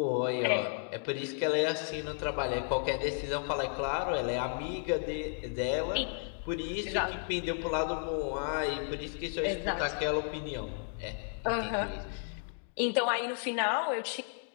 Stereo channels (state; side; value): silent; right; 56 dB below the other